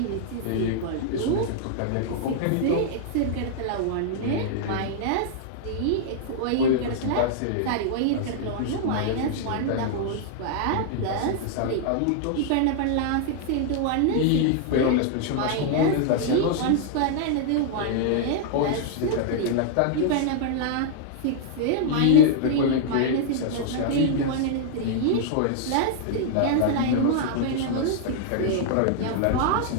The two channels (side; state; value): both; different; correlation -0.01